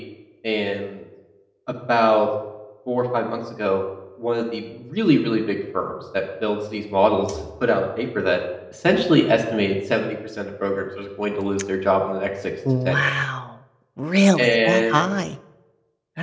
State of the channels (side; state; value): both; identical; correlation 1.00